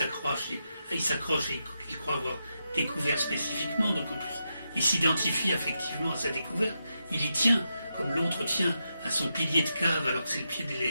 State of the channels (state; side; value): inverted; both; correlation -0.86